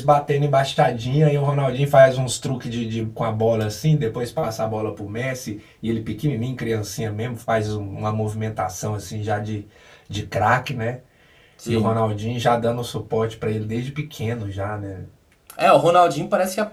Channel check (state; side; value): identical; both; correlation 1.00